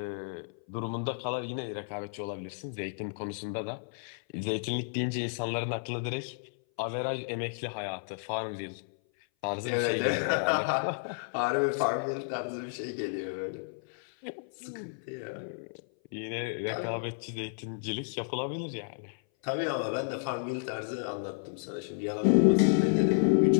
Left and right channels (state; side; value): silent; right; 57 dB below the other